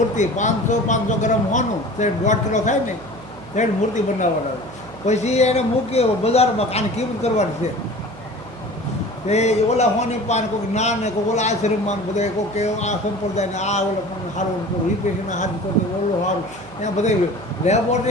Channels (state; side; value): noise; right; hum, 18 dB below the sound